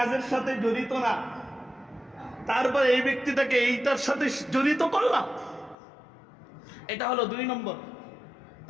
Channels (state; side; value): drops out; right; at 5.8 s